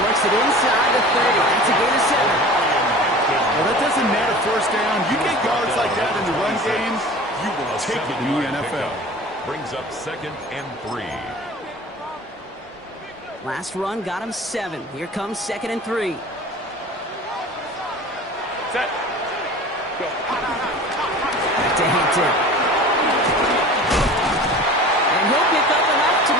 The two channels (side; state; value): both; normal; correlation 0.40